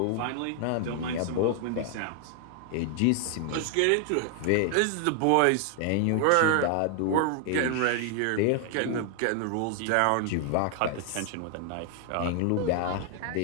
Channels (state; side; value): different; both; correlation 0.00